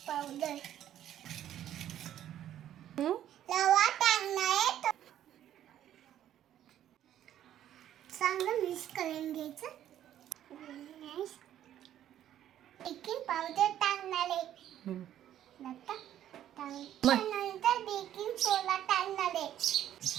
रवा टाकणार. चांगलं मिक्स करून घ्यायचं. बेकिंग पावडर टाकणार आहे. त्यानंतर बेकिंग सोडा टाकणार आहे.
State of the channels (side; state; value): left; quieter; 11.4 dB